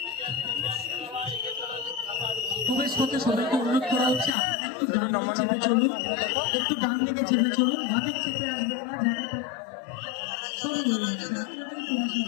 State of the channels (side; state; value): right; drops out; at 4.3 s